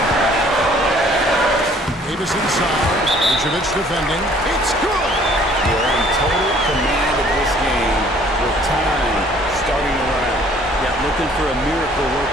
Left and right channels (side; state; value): both; normal; correlation 0.57